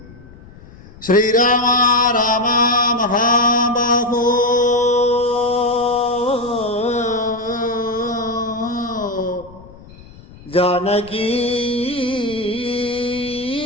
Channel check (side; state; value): left; noise; rumble, 21 dB below the sound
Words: ശ്രീരാമ രാമ മഹാബാഹോ ജാനകീ